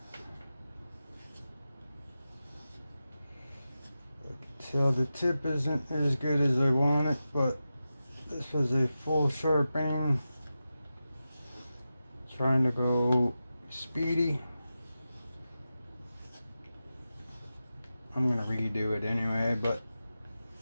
I can tell the tip isn't as good as I want it, but this was a full sharpening. Trying to go speedy. I'm gonna redo it anyway, but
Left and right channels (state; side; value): inverted; both; correlation -0.93